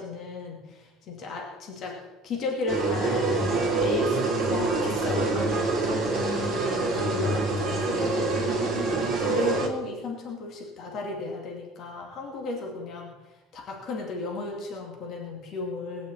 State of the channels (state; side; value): normal; both; correlation 0.46